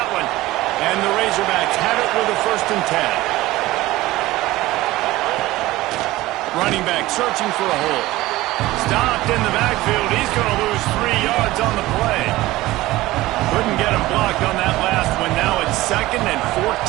one? And the Razorbacks have it with a 1st and 10. Running back searching for a hole. Stopped in the backfield. He's going to lose 3 yards on the play. Couldn't get him blocked on that last one. Now it's 2nd and 14.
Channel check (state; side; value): quieter; left; 17.8 dB